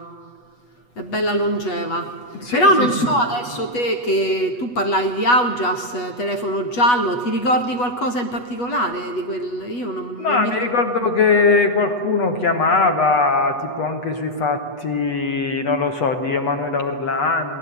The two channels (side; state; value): right; late; 8.2 ms